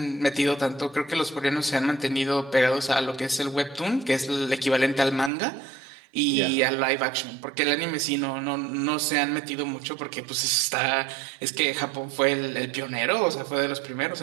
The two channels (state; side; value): drops out; left; at 5.3 s